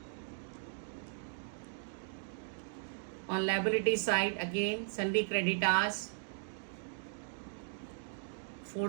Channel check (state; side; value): silent; left; digital silence